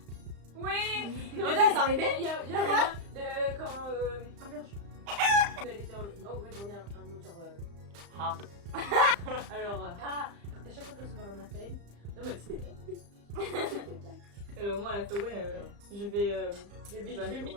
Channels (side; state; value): left; late; 35 ms